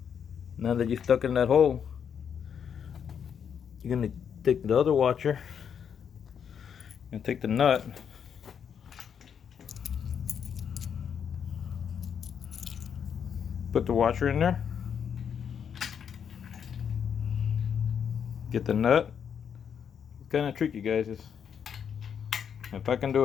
Now that you're stuck in that hole, you're gonna take the other washer and take the nut, put the washer in there, get the nut. It's kind of tricky, guys. If I can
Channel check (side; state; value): right; quieter; 7.7 dB